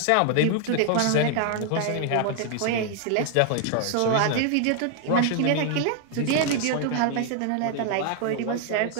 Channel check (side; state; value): both; different; correlation 0.00